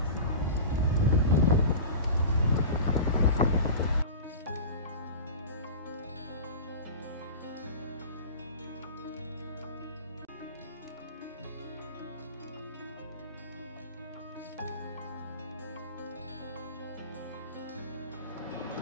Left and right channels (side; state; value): both; inverted; correlation -0.32